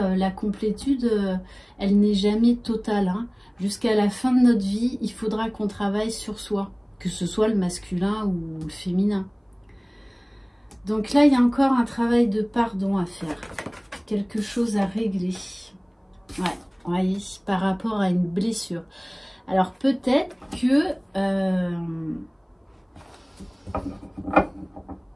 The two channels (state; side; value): identical; both; correlation 1.00